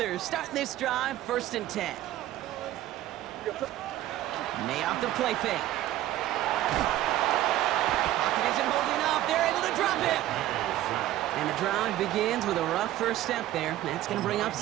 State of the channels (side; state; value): left; quieter; 14.1 dB